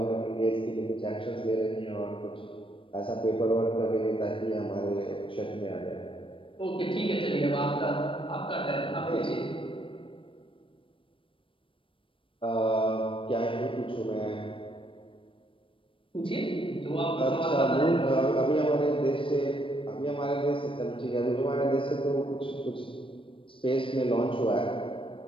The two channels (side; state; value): right; late; 0.25 ms